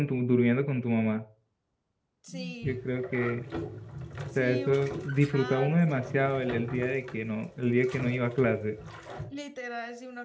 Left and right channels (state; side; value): identical; both; correlation 1.00